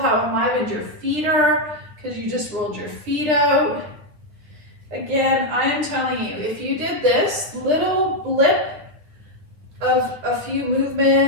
enlivened your feet are because you just rolled your feet out. Again, I am telling you, if you did this little blip of a few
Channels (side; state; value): left; late; 9.4 ms